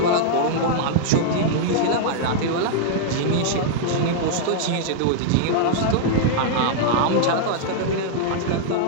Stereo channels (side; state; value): both; different; correlation -0.01